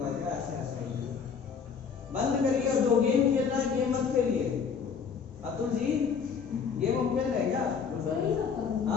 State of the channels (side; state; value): right; quieter; 6.3 dB